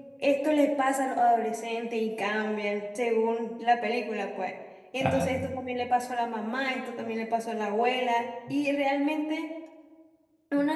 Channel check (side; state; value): both; identical; correlation 1.00